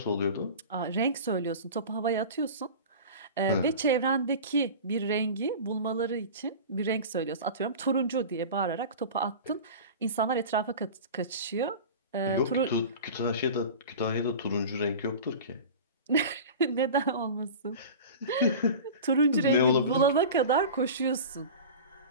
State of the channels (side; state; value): both; inverted; correlation -0.34